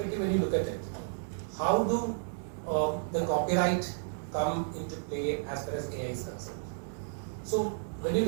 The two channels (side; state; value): left; silent; digital silence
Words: when you look at it, how do the copyright come into play as far as AI is concerned? So, when you